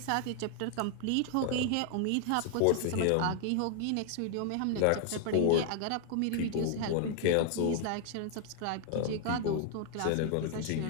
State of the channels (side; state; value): both; different; correlation 0.00